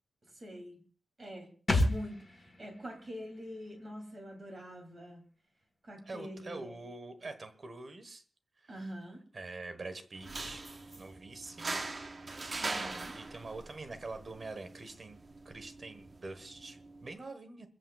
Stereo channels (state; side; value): normal; both; correlation 0.89